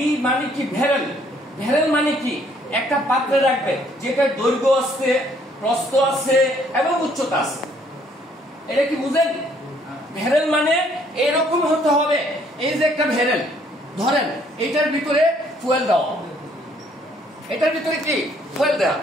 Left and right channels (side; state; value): both; normal; correlation 0.64